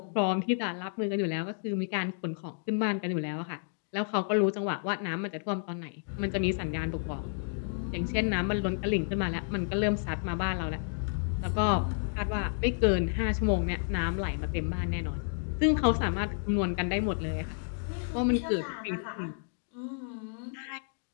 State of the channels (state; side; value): silent; right; digital silence